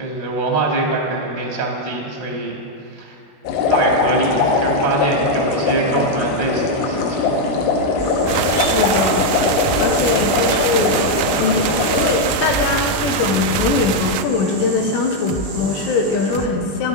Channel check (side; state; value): right; late; 20 ms